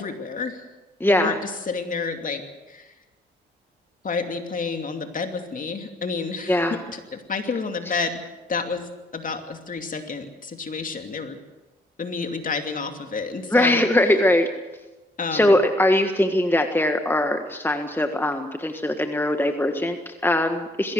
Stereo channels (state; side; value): normal; both; correlation 0.66